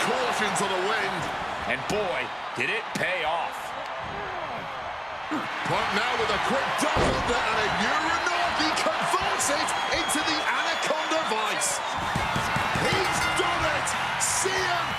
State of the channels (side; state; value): both; identical; correlation 1.00